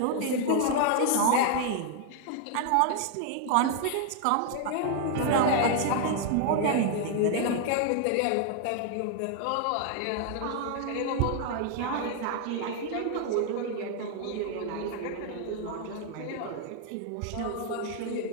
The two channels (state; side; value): different; both; correlation 0.00